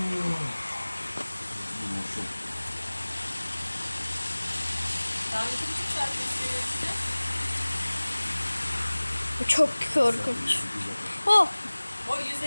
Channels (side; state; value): both; inverted; correlation -1.00